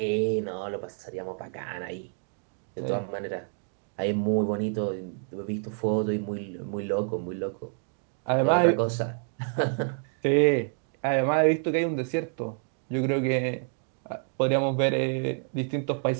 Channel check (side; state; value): left; silent; 59 dB below the other